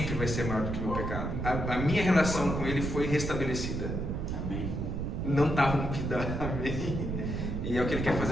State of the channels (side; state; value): right; noise; rumble, 2 dB below the sound